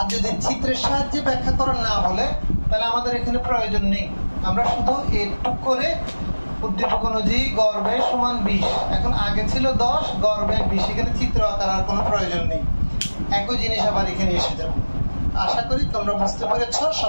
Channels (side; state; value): both; inverted; correlation -1.00